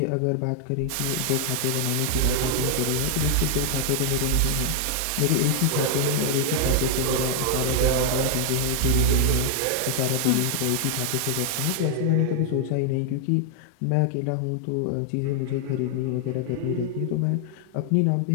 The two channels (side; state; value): both; different; correlation 0.00